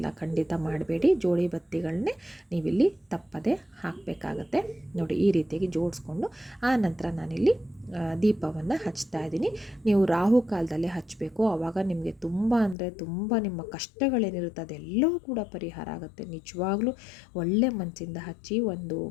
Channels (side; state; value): right; drops out; at 12.8 s